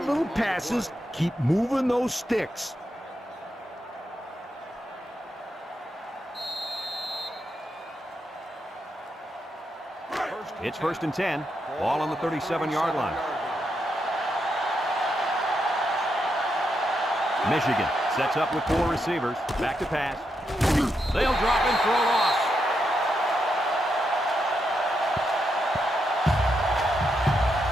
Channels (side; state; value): both; normal; correlation 0.83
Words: little passes. Keep moving those sticks. It's first and 10. Ball on the 37-yard line. Michigan sets up with 4 receivers. Back to pass. They'll drop and throw it off.